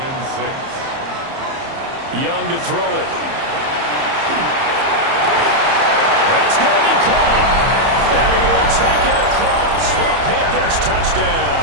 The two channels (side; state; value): left; late; 30 ms